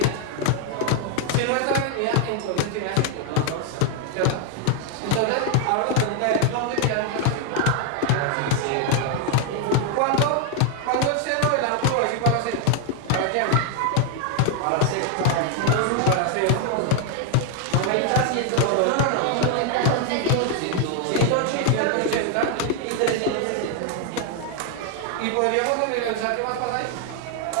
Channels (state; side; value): different; both; correlation 0.00